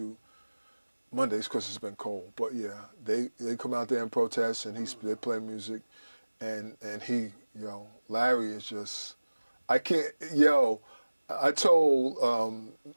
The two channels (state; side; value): inverted; both; correlation -1.00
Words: Mondays because it's been cold. But yeah, they come out there and protest, and they play music, and Larry is just, I told